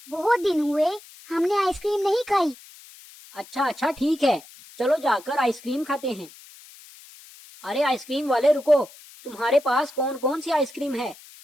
बहुत दिन हुए हमने आइसक्रीम नहीं खाई। अच्छा अच्छा ठीक है, चलो जाकर आइसक्रीम खाते हैं। अरे आइसक्रीम वाले रुको, तुम्हारे पास कौन कौन सी आइसक्रीम है?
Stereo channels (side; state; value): left; noise; hiss, 21 dB below the sound